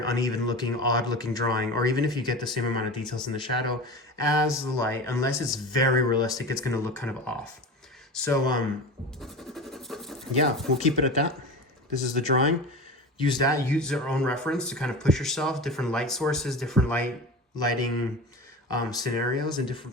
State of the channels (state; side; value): normal; both; correlation 0.30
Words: uneven looking, odd looking drawing. Or even if you get the same amount of details in the shadow as the light, unless it's very realistic, it's going to look kind of off. So yeah, we'll keep it at that. This is the drawing. Use your own reference to kind of push yourself, different light sources, different lighting scenarios and